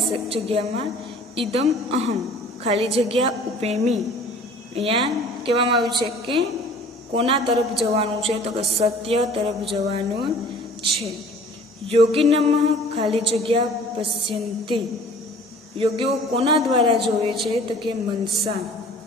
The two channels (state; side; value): normal; both; correlation 0.49